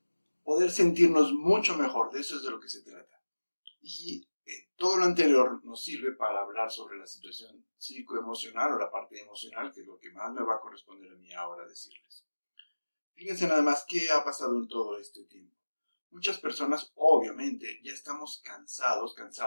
Poder sentirnos mucho mejor, de eso es de lo que se trata. Y todo lo anterior nos sirve para hablar sobre la situación psicoemocional o la parte emocional, que es lo que más me va a corresponder a mí ahora decirles. Fíjense nada más qué ha pasado en todo este tiempo. Muchas personas, obviamente, ya estamos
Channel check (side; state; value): both; inverted; correlation -1.00